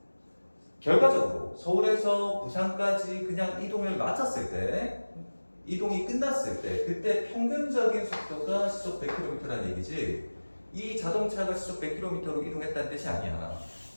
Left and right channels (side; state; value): both; inverted; correlation -1.00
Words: 결과적으로 서울에서 부산까지 그냥 이동을 마쳤을 때, 이동이 끝났을 때, 그때 평균적인 속도가 시속 100km라는 얘기지, 이 자동차가 시속 100km로 이동했다는 뜻이 아니야.